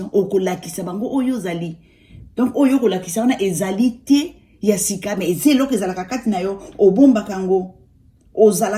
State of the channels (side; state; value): both; identical; correlation 1.00